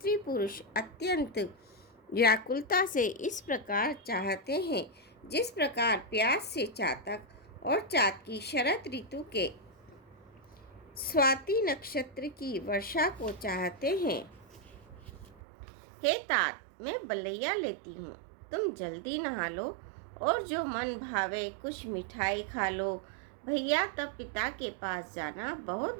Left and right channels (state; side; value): drops out; left; at 15.4 s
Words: पुरुष अत्यंत व्याकुलता से इस प्रकार चाहते हैं जिस प्रकार प्यास से चातक और चातकी शरद ऋतु के स्वाति नक्षत्र की वर्षा को चाहते हैं। हे तात, मैं बलैया लेती हूँ, तुम जल्दी नहा लो और जो मन भावे कुछ मिठाई खा लो। भैया तब पिता के पास जाना, बहुत